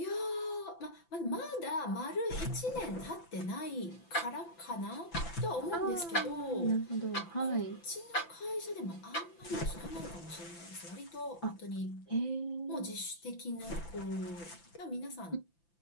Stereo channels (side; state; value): right; late; 5.9 ms